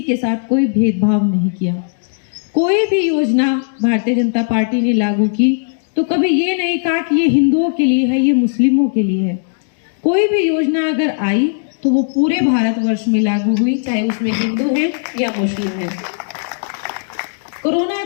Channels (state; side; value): silent; right; digital silence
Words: के साथ कोई भेदभाव नहीं किया। कोई भी योजना भारतीय जनता पार्टी ने लागू की तो कभी ये नहीं कहा कि ये हिंदुओं के लिए है, ये मुस्लिमों के लिए है। कोई भी योजना अगर आई तो वो पूरे भारतवर्ष में लागू हुई, चाहे उसमें हिंदू है या मुस्लिम है। कोरोना